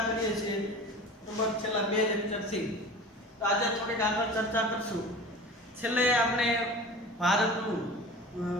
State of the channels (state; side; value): normal; both; correlation 0.37